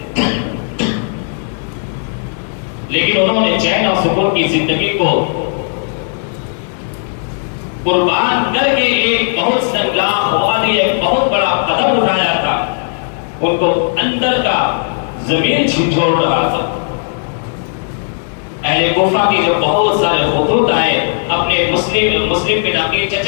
لیکن انہوں نے چین اور سکون کی زندگی کو قربان کر کے ایک بہت سنگلاخ وادی، ایک بہت بڑا قدم اٹھایا تھا۔ ان کو اندر کا زمین جھنجھوڑ رہا تھا۔ اہل کوفہ کی جو بہت سارے خطوط آئے اپنے مسلم بن عقیل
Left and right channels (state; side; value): silent; right; digital silence